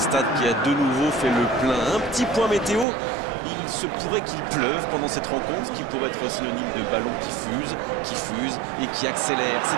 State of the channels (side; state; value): left; drops out; at 2.9 s